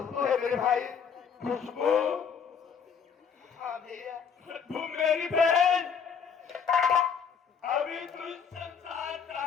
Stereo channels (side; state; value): right; quieter; 6.8 dB